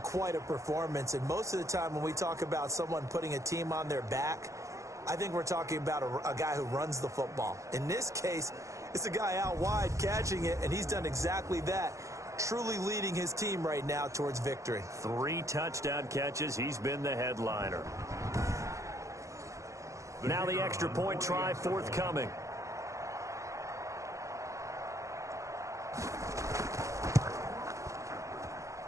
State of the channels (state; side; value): late; left; 0.15 ms